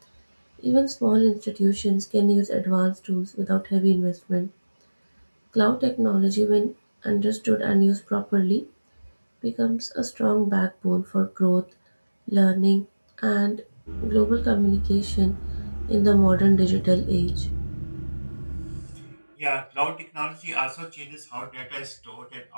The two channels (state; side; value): inverted; both; correlation -1.00